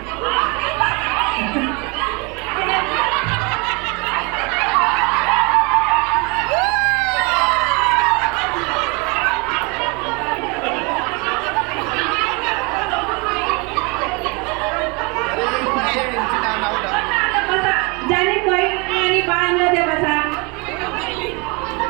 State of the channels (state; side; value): quieter; left; 29.5 dB